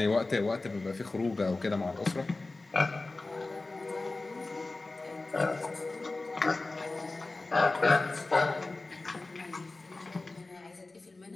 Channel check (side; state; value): right; quieter; 3.3 dB